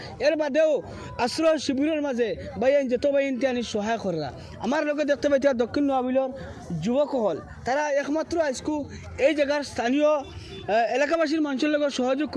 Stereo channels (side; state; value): both; identical; correlation 1.00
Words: এর বাদেও আশ্রয় শিবিরের মাঝে বাইন যত বাইন আনি সহায় করা আমার লোকে দেখতে পাইতা দক্ষিণ নোয়াবিলর যুবকসকল তারা একমাত্র আজকু এই জায়গার স্থানীয় এলাকাবাসীর মানুষের লগে সহযোগ